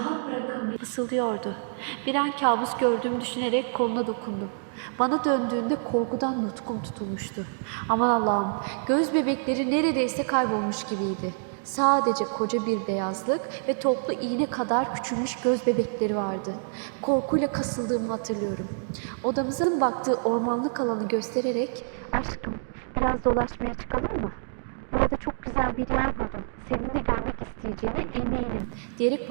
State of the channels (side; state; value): left; silent; digital silence